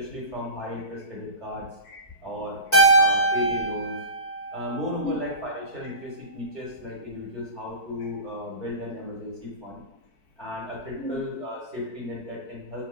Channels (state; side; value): late; right; 4.6 ms